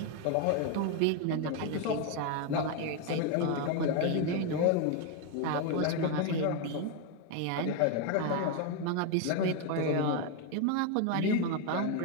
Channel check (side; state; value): both; different; correlation 0.01